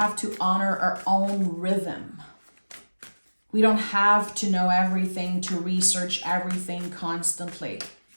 to honor our own rhythm. We don't have to know everything, to research everything constantly.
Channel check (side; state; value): both; inverted; correlation -1.00